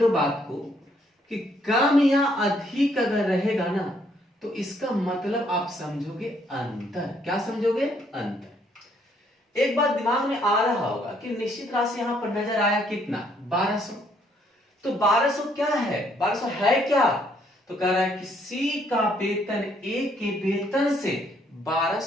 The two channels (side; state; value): both; normal; correlation 0.68